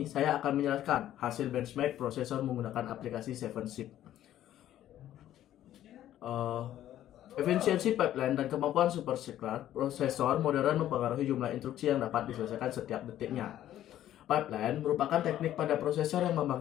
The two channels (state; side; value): quieter; right; 12.4 dB